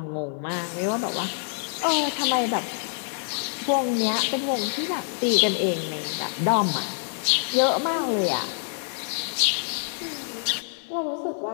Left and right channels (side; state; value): right; silent; digital silence